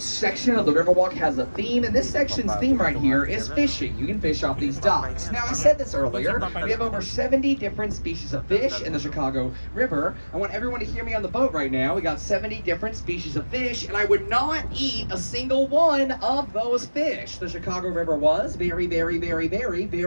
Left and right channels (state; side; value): inverted; both; correlation -1.00